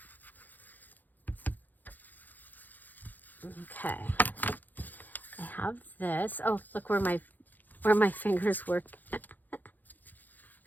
Okay. I have this. Oh, look where my fingers work.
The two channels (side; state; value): right; late; 0.085 ms